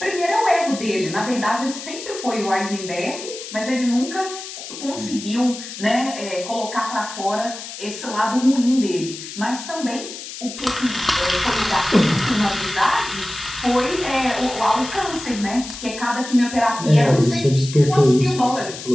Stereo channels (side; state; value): left; noise; hiss, 11 dB below the sound